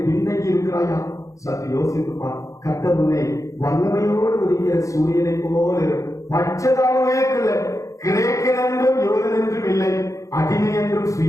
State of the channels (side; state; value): right; late; 0.15 ms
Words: பின்னங்கி இருக்கிறாயா? சற்று யோசித்துப்பார். கர்த்தர் உன்னை வல்லமையோடு உதிக்கிற சூரியனை போல பட்சதாகவே கிரேக்கன் என்றும் யூதன் என்றும் இல்லை, அடிமை என்றும்